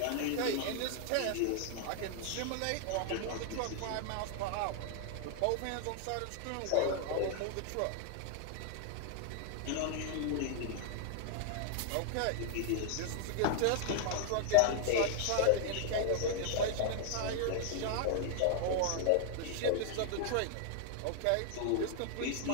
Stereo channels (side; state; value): both; different; correlation 0.00